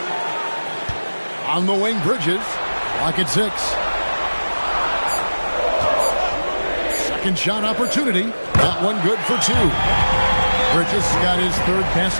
On the wing, Bridges. Clock at 6. Second shot opportunity. That one good for 2. Bridges got his third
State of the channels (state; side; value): inverted; both; correlation -1.00